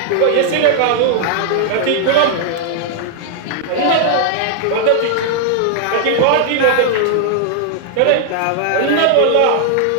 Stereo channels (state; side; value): different; both; correlation 0.00